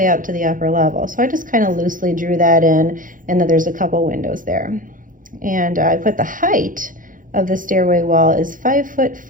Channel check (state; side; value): late; left; 0.39 ms